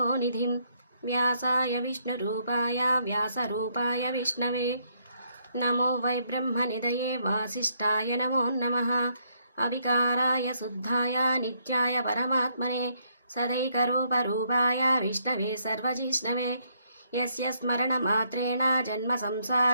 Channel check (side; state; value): both; inverted; correlation -0.72